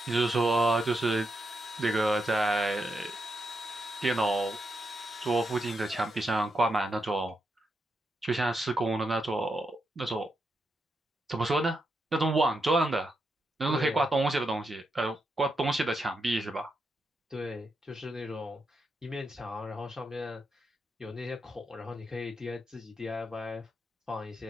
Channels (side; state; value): both; normal; correlation 0.83